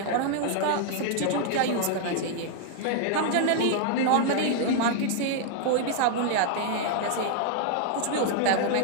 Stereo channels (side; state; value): both; different; correlation 0.00